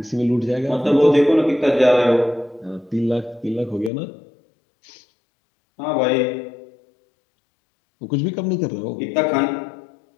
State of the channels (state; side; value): drops out; right; at 3.9 s